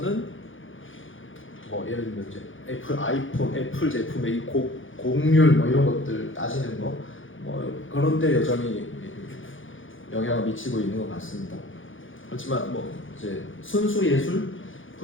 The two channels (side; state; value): right; late; 0.57 ms